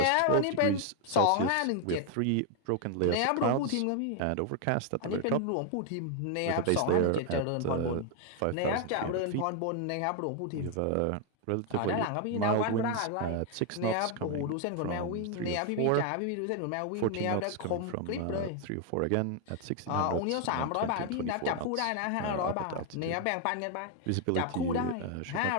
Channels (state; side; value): different; both; correlation 0.00